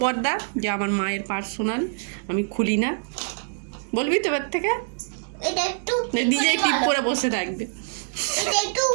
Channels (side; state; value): left; silent; 62 dB below the other